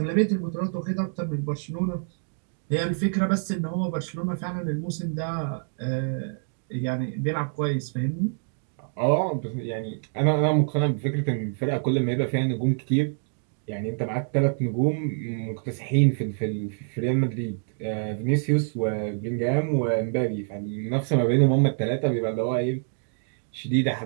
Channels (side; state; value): left; silent; digital silence